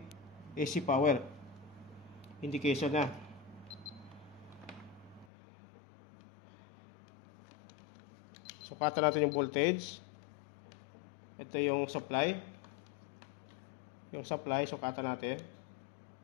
AC power. Indication na. Sukatan natin yung voltage. Ito yung supply. Yung supply, sukatan natin.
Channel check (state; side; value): drops out; right; at 5.2 s